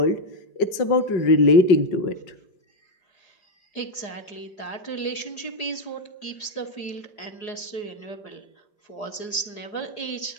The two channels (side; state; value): right; late; 5.4 ms